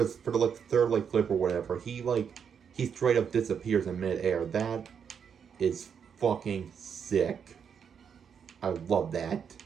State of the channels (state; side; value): quieter; left; 7.3 dB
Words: the like third like clip or whatever, he straight up disappears in midair. That is fucking sick. I love that.